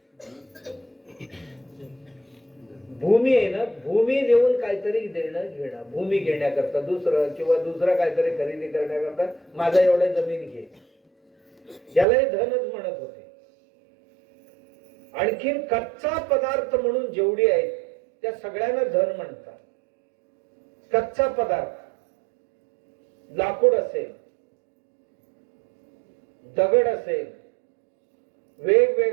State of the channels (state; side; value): drops out; left; at 12.1 s